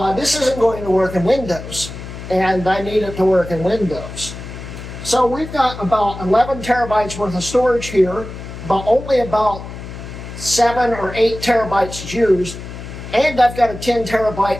this isn't going to work in Windows, and I need it to work in Windows. So we've got about 11 terabytes worth of storage here, but only about 7 or 8 terabytes used, and I've got a 10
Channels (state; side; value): noise; left; hum, 11 dB below the sound